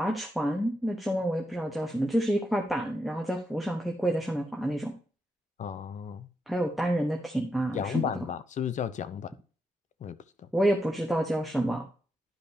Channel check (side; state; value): both; normal; correlation 0.83